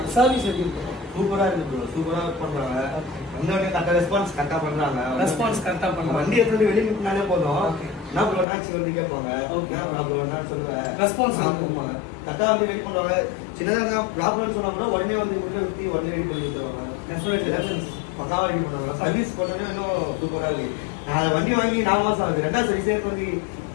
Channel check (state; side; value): drops out; right; at 8.5 s